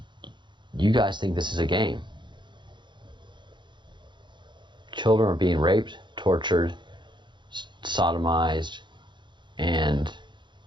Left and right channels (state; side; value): late; left; 0.23 ms